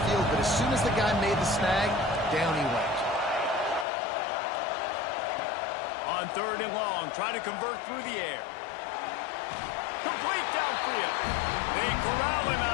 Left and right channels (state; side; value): drops out; right; at 3.9 s